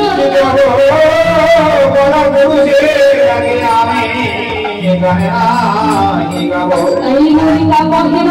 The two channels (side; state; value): both; identical; correlation 1.00